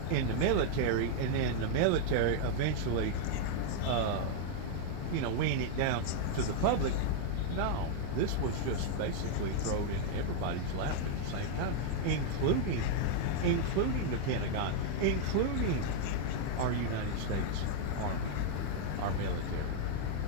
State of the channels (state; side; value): different; both; correlation 0.00